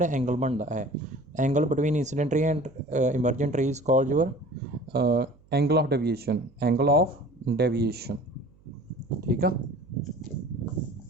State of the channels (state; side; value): noise; right; hum, 29 dB below the sound